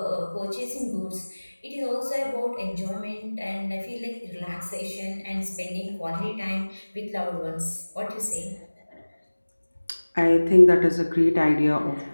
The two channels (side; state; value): both; inverted; correlation -1.00